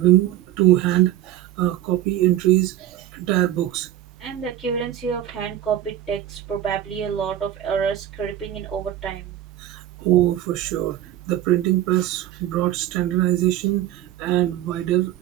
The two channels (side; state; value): left; quieter; 12.4 dB